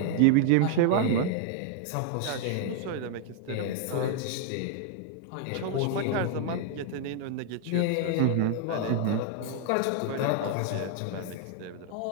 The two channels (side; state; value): both; different; correlation 0.00